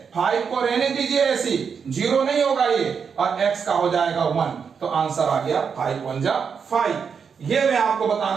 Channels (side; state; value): left; quieter; 6.4 dB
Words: 5 को रहने दीजिए ऐसी, 0 नहीं होगा ये, और x का हो जाएगा 1, तो आंसर आ गया 5 1 जा 5। ये मैं आपको